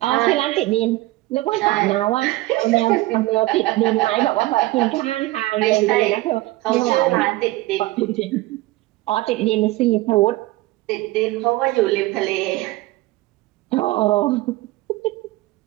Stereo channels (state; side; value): quieter; left; 19.0 dB